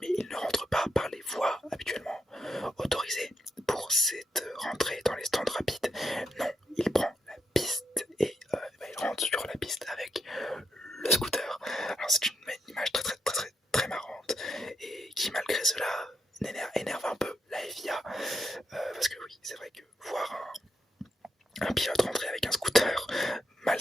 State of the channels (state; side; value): normal; both; correlation 0.82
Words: mais il ne rentre pas par les voies habituellement autorisées pour cette rentrée dans les stands rapides. Non, il prend la piste et il rentre sur la piste avec le scooter. Alors c'est une image très marrante et qui malgré cela énerve un peu la FIA parce que oui, c'est vrai que voir un pilote rentrer avec un scooter mal